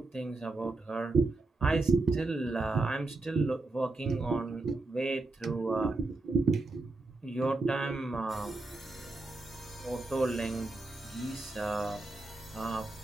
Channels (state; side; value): quieter; left; 3.2 dB